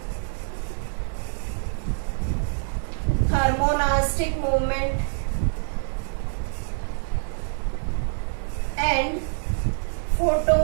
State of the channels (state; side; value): silent; left; digital silence